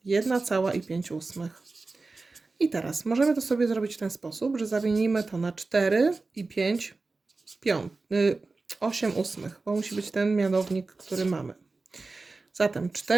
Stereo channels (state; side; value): quieter; left; 3.7 dB